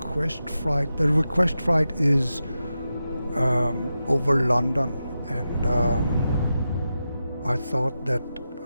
flight. The request flight is over London, and I thought that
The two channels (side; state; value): both; inverted; correlation -0.90